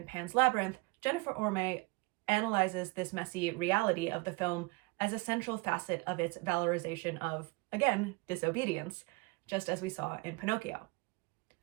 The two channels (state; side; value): quieter; left; 26.7 dB